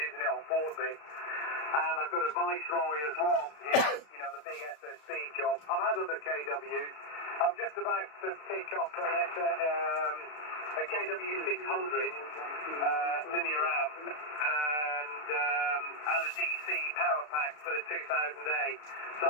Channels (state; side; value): late; right; 34 ms